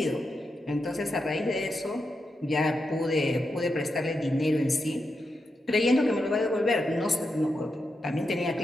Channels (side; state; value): both; normal; correlation 0.86